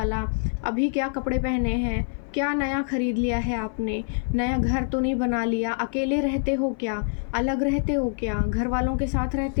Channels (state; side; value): silent; right; 57 dB below the other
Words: अभी क्या कपड़े पहने हैं, क्या नया ख़रीद लिया है आपने, नया घर तो नहीं बना लिया, अकेले रहते हो क्या, अलग रहते हो क्या, घर वालों के साथ